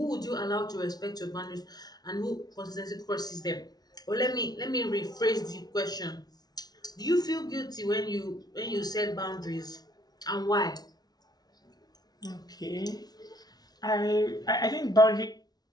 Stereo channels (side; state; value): right; late; 0.19 ms